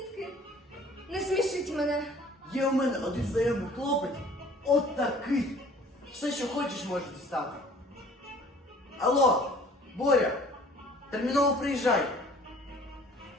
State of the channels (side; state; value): both; normal; correlation 0.52